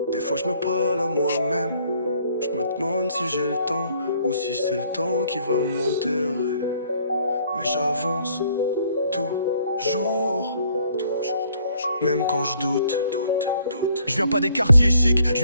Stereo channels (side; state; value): both; inverted; correlation -0.64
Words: Des fois je me parle à moi-même. Je me demande si j'ai le temps ou si c'est le temps qui va m'enterrer. Mais j'avance toujours, même quand je doute. Je viens pas des quartiers chics, je